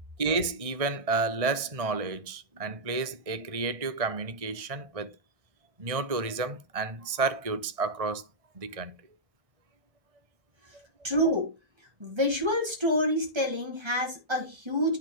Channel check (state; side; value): late; left; 1.6 ms